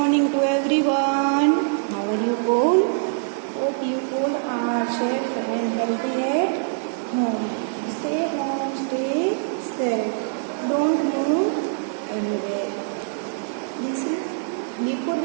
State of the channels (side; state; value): left; silent; 63 dB below the other